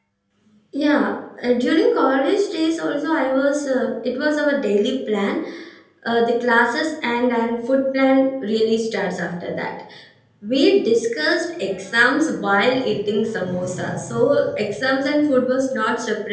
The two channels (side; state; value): both; identical; correlation 1.00